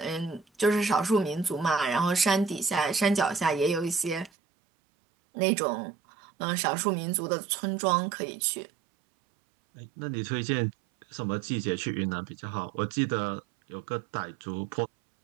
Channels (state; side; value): drops out; left; at 4.3 s